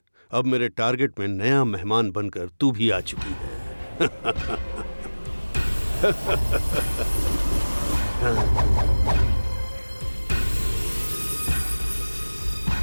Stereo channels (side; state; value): both; inverted; correlation -1.00